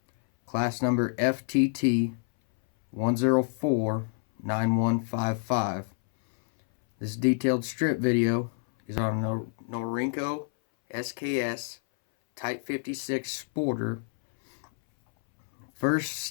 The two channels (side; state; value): right; silent; 59 dB below the other